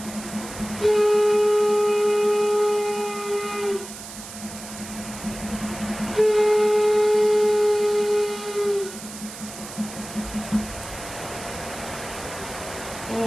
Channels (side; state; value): right; noise; hiss, 13 dB below the sound